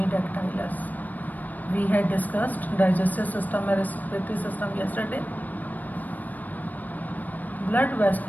We had discussed digestive system and respiratory system yesterday. Blood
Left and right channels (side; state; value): right; late; 0.083 ms